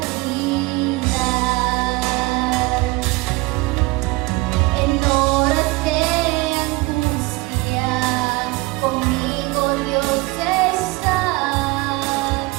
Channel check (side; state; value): left; quieter; 22.4 dB